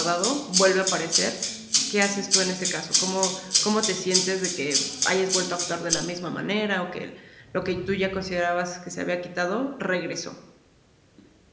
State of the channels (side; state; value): both; identical; correlation 1.00